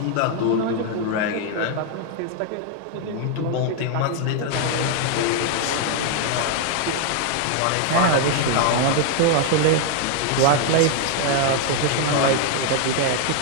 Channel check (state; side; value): different; both; correlation 0.00